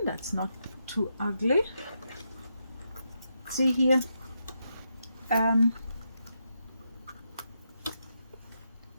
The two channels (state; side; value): inverted; both; correlation -0.82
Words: That's not too ugly. See here,